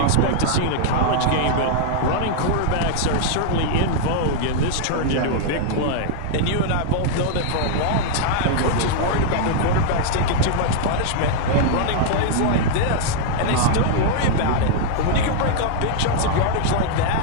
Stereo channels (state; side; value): different; both; correlation -0.01